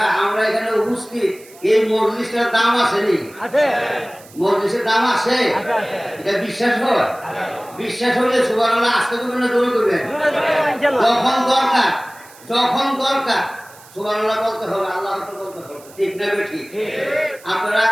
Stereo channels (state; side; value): noise; right; hiss, 23 dB below the sound